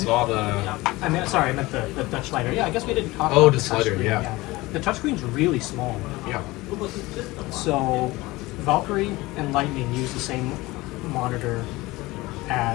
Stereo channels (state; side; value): quieter; right; 20.5 dB